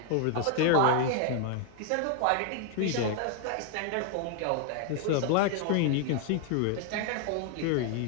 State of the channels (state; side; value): different; both; correlation 0.00